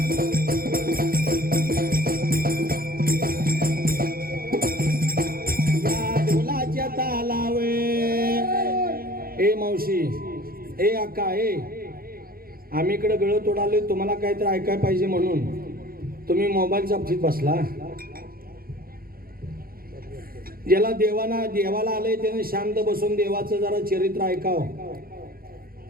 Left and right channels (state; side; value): late; left; 0.43 ms